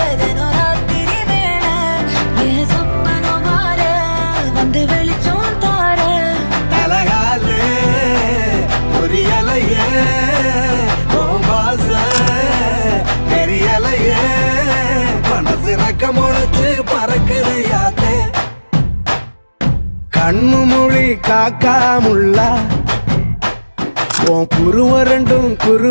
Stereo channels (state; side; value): inverted; both; correlation -1.00